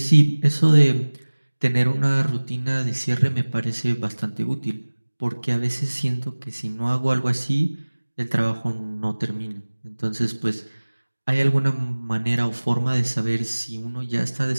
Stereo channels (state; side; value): inverted; both; correlation -1.00